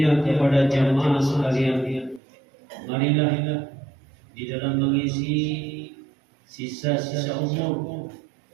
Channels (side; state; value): left; drops out; at 2.2 s